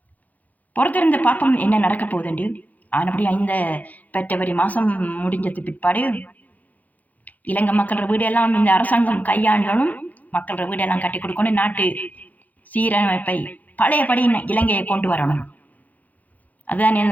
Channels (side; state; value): right; late; 0.079 ms